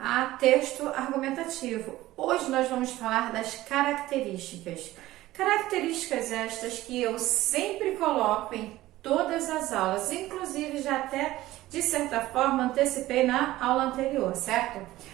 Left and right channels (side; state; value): left; quieter; 16.3 dB